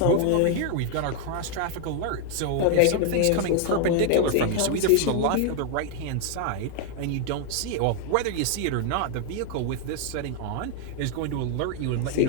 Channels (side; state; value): both; different; correlation 0.00